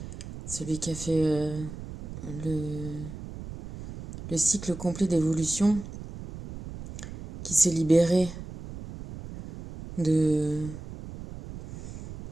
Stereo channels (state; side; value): noise; right; rumble, 12 dB below the sound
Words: Celui qui a fait le, le cycle complet d'évolution, qui s'est libéré de.